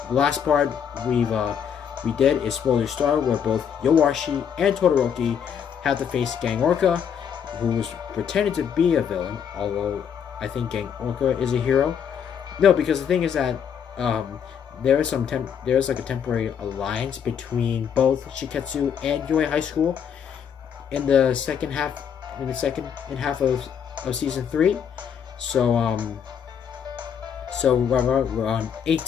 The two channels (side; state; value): right; quieter; 7.8 dB